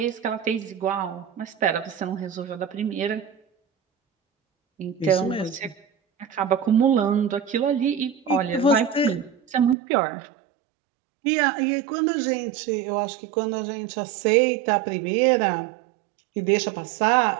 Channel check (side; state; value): left; drops out; at 9.8 s